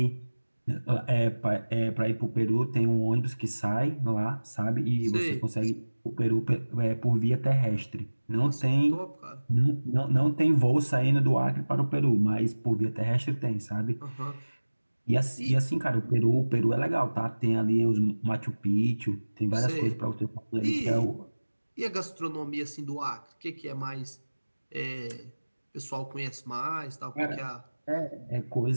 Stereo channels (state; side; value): inverted; both; correlation -1.00